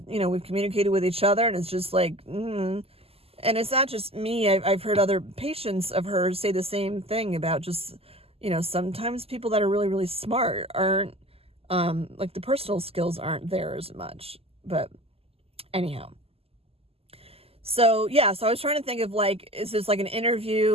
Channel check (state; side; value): late; left; 0.29 ms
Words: we've communicated with each other, and it's just like, and it's not just me. I've heard other patients of hers say the same thing about just, sometimes people that are really, really smart aren't, like the personal skills aren't there as much. But anyhow. So, yeah, so I was trying to think of like, is this like an